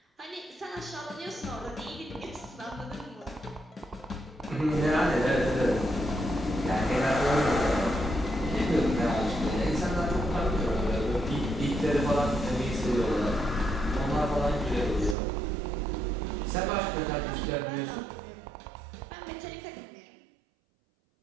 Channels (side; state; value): left; drops out; at 15.2 s